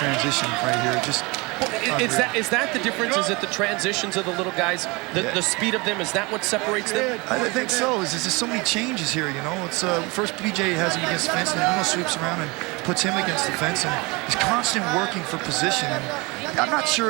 right here. Just. Is that the difference? Is it the transitions of the little guys, the speed of them? Is that what separates them? I think so. There's just so many changes here, you know. It's first BJ has him against the fence, and then Uno sweeps around and puts him against the fence, and he's constant working for position. And I'm not sure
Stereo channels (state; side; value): quieter; left; 26.2 dB